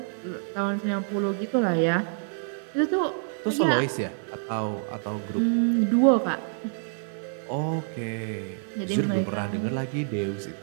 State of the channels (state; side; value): silent; left; digital silence